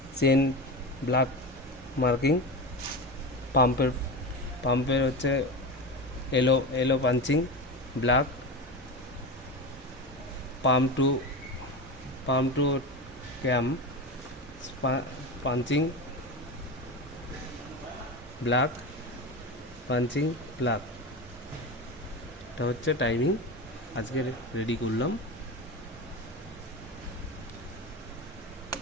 চেন, ব্ল্যাক মার্কিং, পাম্পের হচ্ছে এলো এলো punching black, pump to cam punching black, punching black. এটা হচ্ছে টাইমিং আজকে রেডি করলাম।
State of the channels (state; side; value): normal; both; correlation 0.24